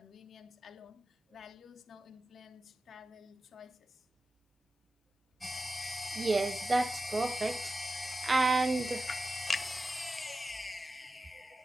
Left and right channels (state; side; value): normal; both; correlation 0.93